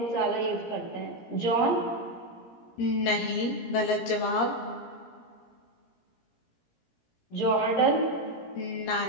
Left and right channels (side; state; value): right; late; 17 ms